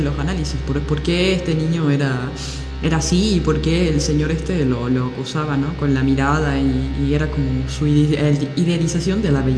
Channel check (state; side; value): identical; both; correlation 1.00